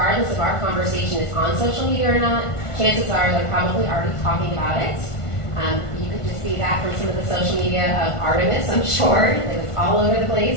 if our conversation is on social media or not, chances are they're probably already talking about it. You could just see that from some of the social media of Artemis, I'm sure. It was all over the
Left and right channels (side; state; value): right; late; 1.5 ms